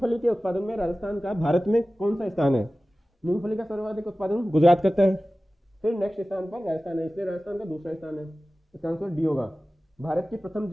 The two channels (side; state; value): both; normal; correlation 0.96